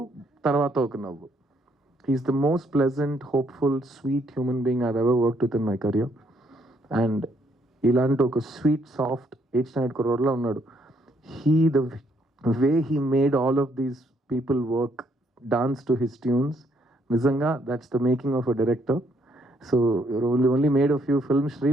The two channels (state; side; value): normal; both; correlation 0.70